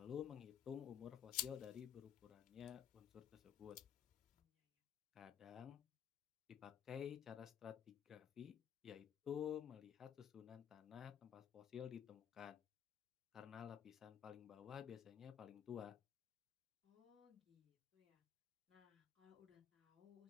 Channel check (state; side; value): quieter; right; 9.0 dB